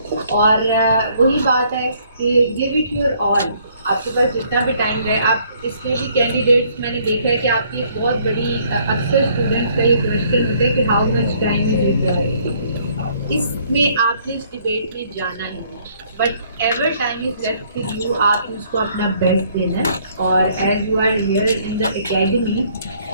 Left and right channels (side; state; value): both; inverted; correlation -0.64